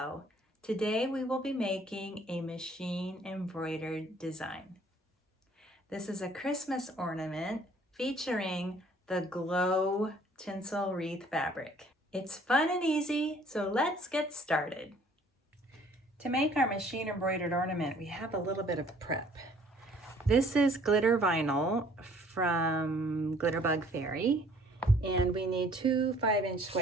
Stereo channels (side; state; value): both; normal; correlation 0.57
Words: Today we will be making a machine embroidered design. This is a Christmas ornament featuring the glow tinsel wreath fabric. It's fun and easy, so let's get started. To make our machine embroidered ornament, we have a little bit of prep. This is glitter vinyl from Glitterbug Fairy. And we need two 5-inch